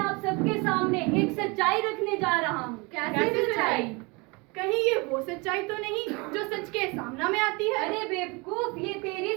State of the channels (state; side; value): quieter; left; 27.8 dB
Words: सबके सामने एक सच्चाई रखने जा रहा हूँ। कैसी सच्चाई? कहीं ये वो सच्चाई तो नहीं जो सच के सामने में आती है? अरे बेवकूफ, ये तेरी